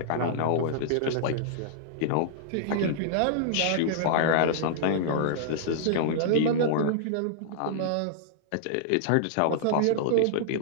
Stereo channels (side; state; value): both; different; correlation -0.01